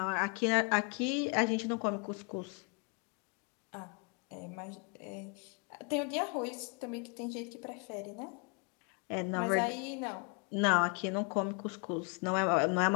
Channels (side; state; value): right; quieter; 35.5 dB